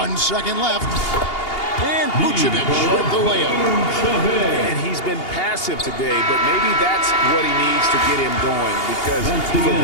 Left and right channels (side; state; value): right; late; 2.8 ms